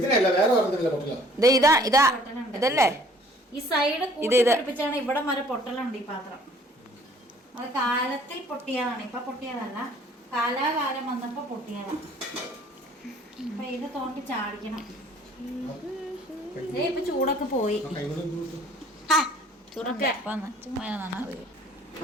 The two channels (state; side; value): normal; both; correlation 0.55